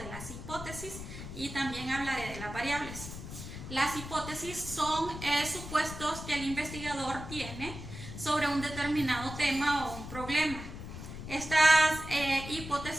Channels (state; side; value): noise; left; rumble, 10 dB below the sound